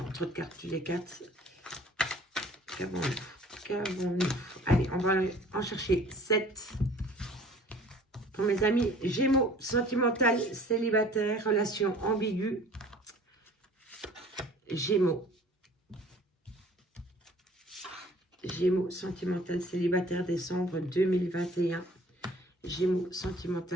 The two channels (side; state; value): both; normal; correlation 0.51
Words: trop de cartes, les cartes. Qu'avons-nous? Allez, on va en chercher 7. Pour mes amis Gémeaux, sentimental, célibataire, relation ambiguë. Gémeaux. Gémeaux, sentimental, célibataire, décembre 2021. Gémeaux,